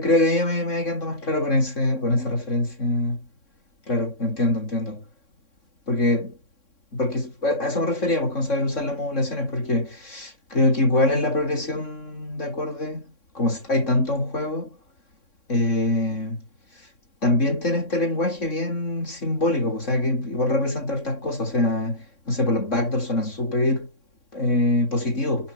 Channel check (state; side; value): late; right; 3.6 ms